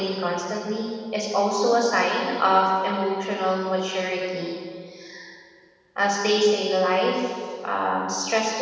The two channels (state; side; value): identical; both; correlation 1.00